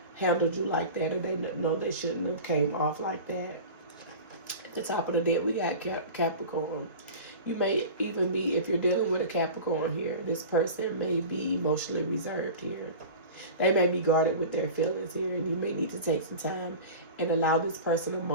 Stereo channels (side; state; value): both; inverted; correlation -0.34